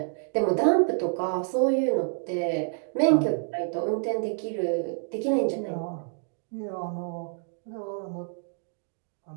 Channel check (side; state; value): left; silent; digital silence